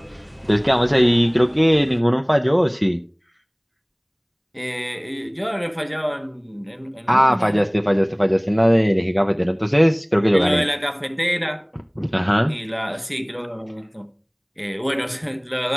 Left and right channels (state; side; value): identical; both; correlation 1.00